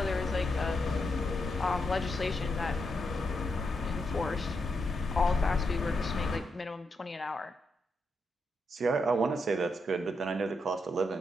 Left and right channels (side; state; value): both; normal; correlation 0.82